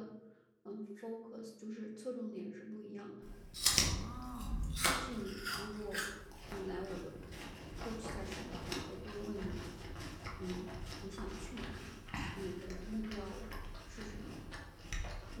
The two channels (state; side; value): identical; both; correlation 1.00